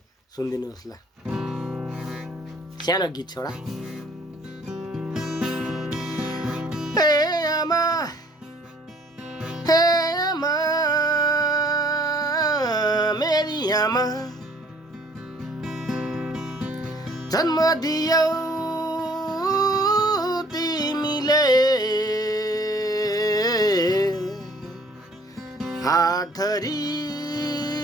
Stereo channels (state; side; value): normal; both; correlation 0.58